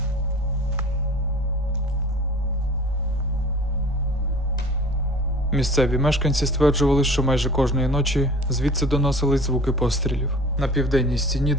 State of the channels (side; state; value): both; normal; correlation 0.43